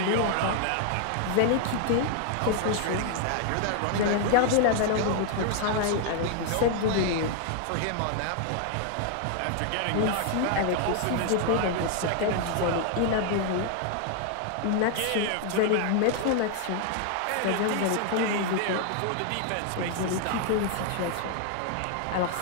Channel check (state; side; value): different; both; correlation 0.00